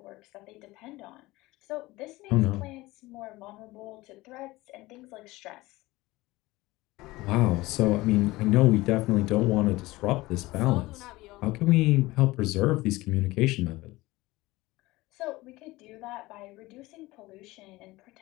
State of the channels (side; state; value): right; quieter; 19.7 dB